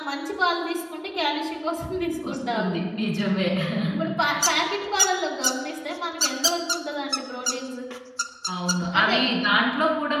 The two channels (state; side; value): identical; both; correlation 1.00